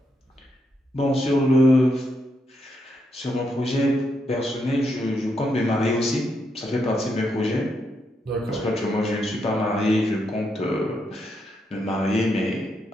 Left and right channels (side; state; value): both; normal; correlation 0.80